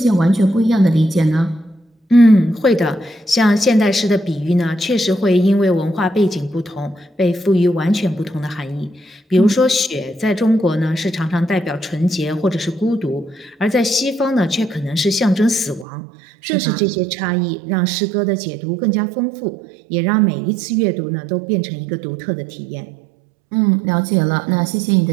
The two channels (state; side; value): drops out; left; at 15.9 s